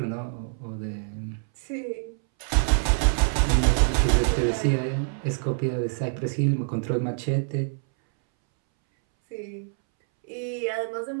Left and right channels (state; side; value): silent; left; 61 dB below the other